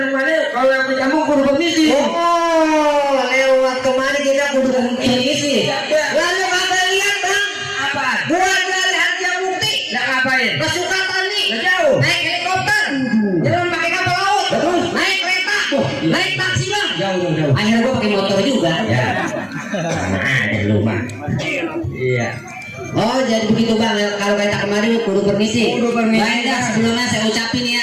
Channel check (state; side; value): identical; both; correlation 1.00